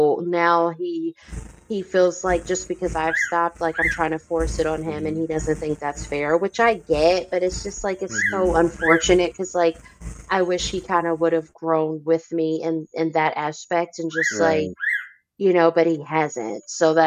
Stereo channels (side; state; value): both; identical; correlation 1.00